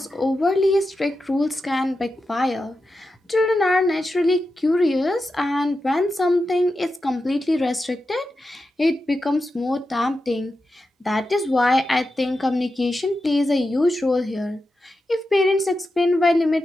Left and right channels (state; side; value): normal; both; correlation 0.90